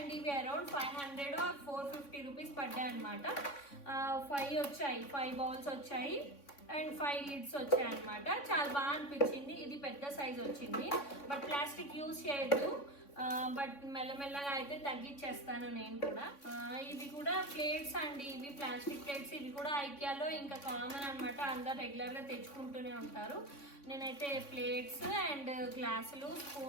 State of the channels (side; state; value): right; late; 3.6 ms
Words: ఇవి అరౌండ్ 500 or 450 రూపీస్ పడ్డాయి అనమాట. 5 వచ్చాయి, 5 బౌల్స్ వచ్చాయి అండ్ 5 లిడ్స్ వచ్చాయి అనమాట. చాలా బాగా అనిపించింది. ఇది పెద్ద సైజ్ వచ్చింది, బట్ ప్లాస్టిక్ యూజ్ చేయొద్దు. బట్ మెల్లమెల్లగా అయితే తగ్గించేస్తాను నేను కూడా. ఇవి కూడా ప్లేట్స్ అండి, ఇవి ప్లాస్టిక్ ప్లేట్స్. ఇవి కూడా ఐకియాలో ఇంకా కామన్ అనమాట, అందరు రెగ్యులర్గా తెచ్చుకుంటూనే ఉంటారు. నేనైతే ప్లేట్స్ అండ్ గ్లాసులు,